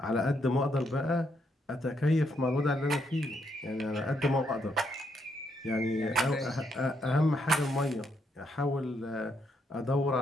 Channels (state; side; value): normal; both; correlation 0.76